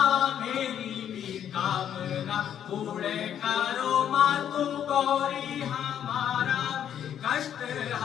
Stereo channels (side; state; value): right; quieter; 9.6 dB